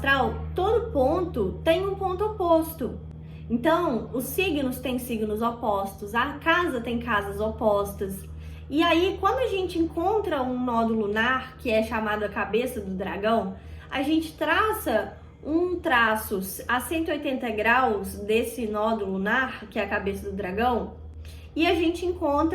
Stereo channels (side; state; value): both; identical; correlation 1.00